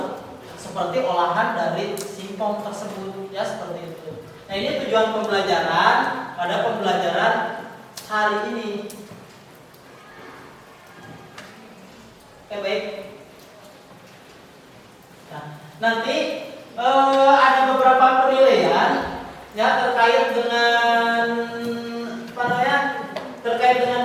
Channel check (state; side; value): identical; both; correlation 1.00